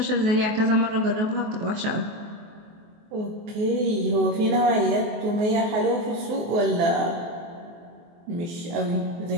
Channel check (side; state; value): left; late; 23 ms